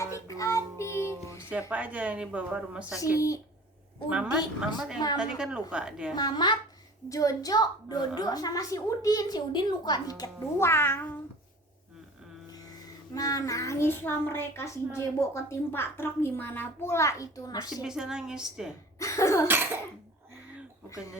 adik-adik. Waduh, siapa aja yang dibawa rumah sakit? Si Mamat Udin, yang tadi kan luka dia. Mamat, Jojo, Dodo sama si Udin. Si Udin luka dikit doang. Nah nangis lah mereka, si Jebo ketimpa truk, gimana pula itu Masih nasib. bisa nangis dia. Bukannya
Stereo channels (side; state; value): both; normal; correlation 0.44